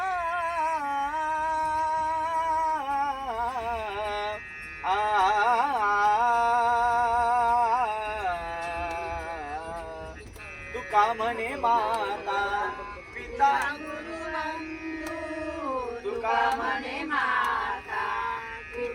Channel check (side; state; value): both; identical; correlation 1.00